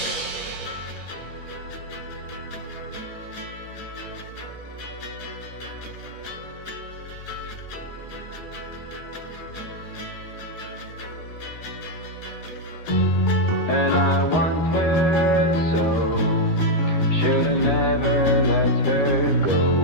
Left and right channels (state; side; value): late; right; 13 ms